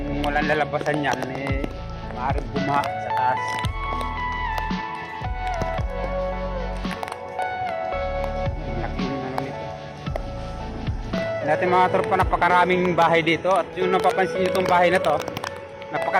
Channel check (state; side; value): identical; both; correlation 1.00